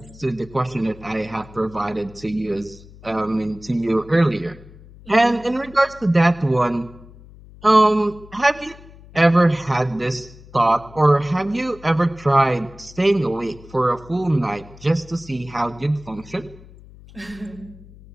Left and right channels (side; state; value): left; noise; hum, 21 dB below the sound